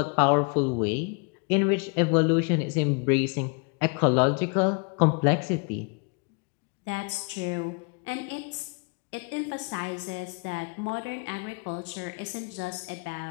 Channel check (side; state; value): right; quieter; 33.5 dB